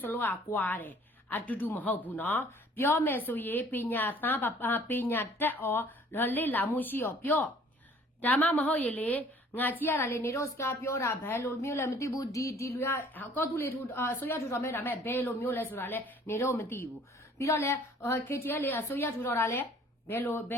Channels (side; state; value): both; normal; correlation 0.55